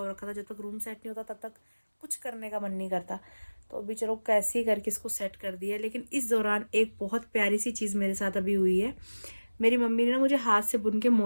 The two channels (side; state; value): both; inverted; correlation -1.00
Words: रखा था। जब तक रूम सेट नहीं होता तब तक कुछ करने का मन नहीं करता। तो अभी चलो कैसे ही करके इसको सेट कर दिया। लेकिन इस दौरान एक बहुत प्यारी सी चीज़ मेरे साथ अभी हुई है। मेरी मम्मी ने ना मुझे हाथ से बुन के